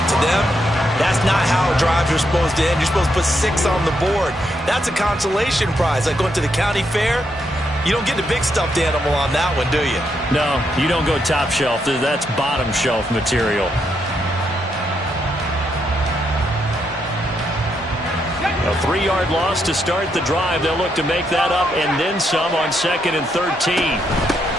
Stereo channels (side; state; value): both; normal; correlation 0.79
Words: To them, that's not how drives are supposed to end. You're supposed to put 6 on the board. That's a consolation prize. Like going to the county fair, you don't get the big stuffed animal on that one, do you? No, you don't go top shelf. That's bottom shelf material. A 3-yard loss to start the drive. They'll look to make that up and then some on 2nd and 13.